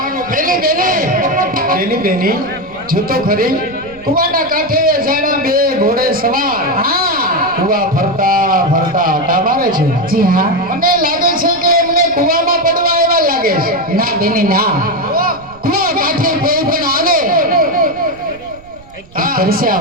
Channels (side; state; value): right; noise; rumble, 23 dB below the sound